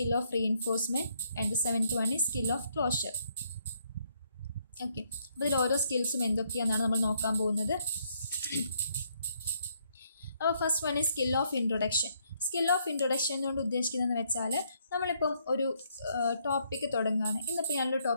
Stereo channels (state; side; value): inverted; both; correlation -0.72